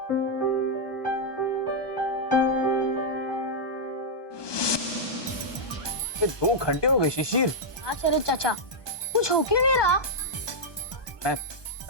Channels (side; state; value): right; late; 1.2 ms